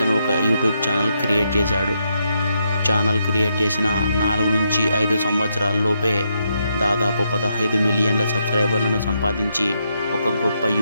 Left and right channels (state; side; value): inverted; both; correlation -0.79